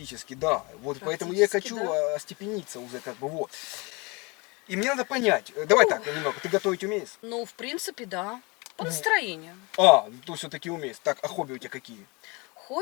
да. Вот поэтому я и Практически, хочу да. остепениться уже, как бы, вот. И мне надо понять, давай так, немного, ты готовить умеешь? Ну, в принципе, да. По настроению. А, то все-таки умеешь. Так, а хобби у тебя какие?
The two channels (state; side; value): quieter; right; 27.3 dB